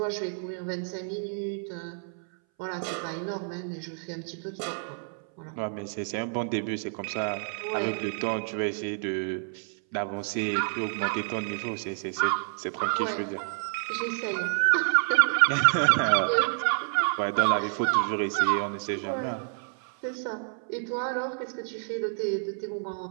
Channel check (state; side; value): silent; left; 59 dB below the other